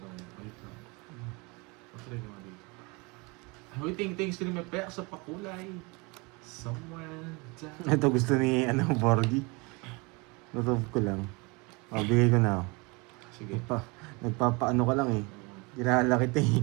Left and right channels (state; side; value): quieter; left; 27.6 dB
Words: Wait lang. Patry naman dito. Uy, thanks to may pek sa pakulay. Somewhere down. Ito gusto ni Borgie. Lutob ko lang. O, bigay ko na. Sige. Nagpapaano ka lang eh. Ginala kita eh.